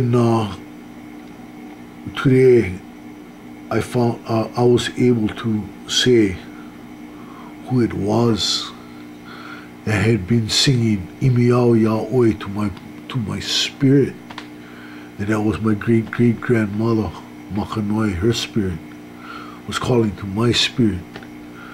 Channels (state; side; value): identical; both; correlation 1.00